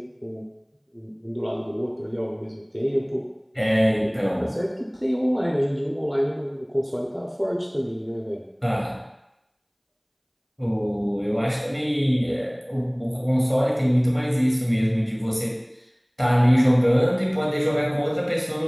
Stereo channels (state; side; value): identical; both; correlation 1.00